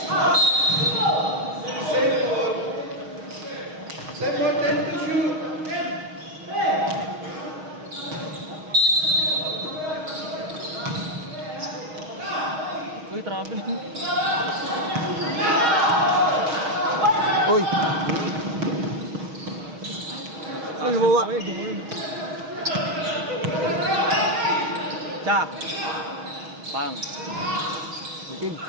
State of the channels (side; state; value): left; late; 6.4 ms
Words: Same one, 10 to shoot. Uy! Uy, mawa! Tsak! Pang! Bitin.